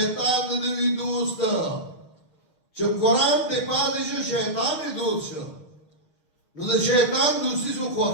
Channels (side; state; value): right; late; 6.4 ms